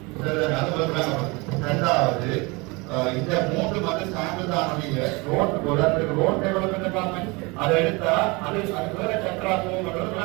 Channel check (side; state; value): left; quieter; 26.3 dB